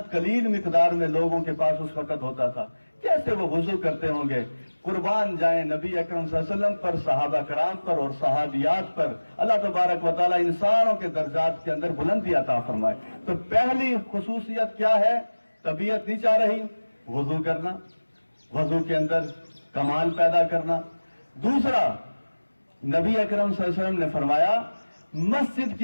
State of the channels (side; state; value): both; inverted; correlation -1.00